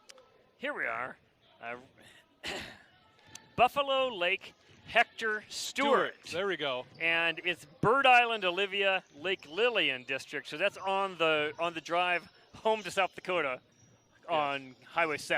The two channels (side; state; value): both; identical; correlation 1.00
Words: Here we are. Buffalo Lake Hector Stewart. There we go. And it's Bird Island, Olivia, Lake Lillian district. So that's on the drive home to South Dakota on Highway